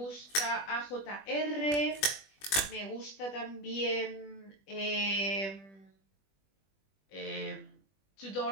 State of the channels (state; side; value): late; right; 20 ms